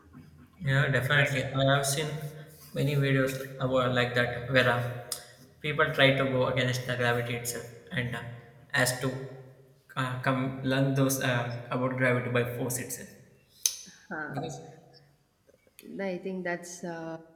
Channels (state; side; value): identical; both; correlation 1.00